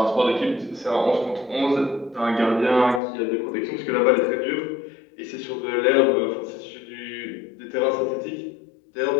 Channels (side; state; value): right; drops out; at 3.0 s